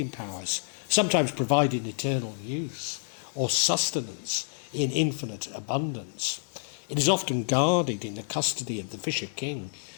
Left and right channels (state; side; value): silent; right; digital silence